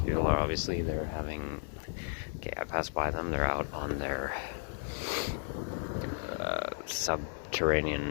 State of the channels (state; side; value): silent; right; 55 dB below the other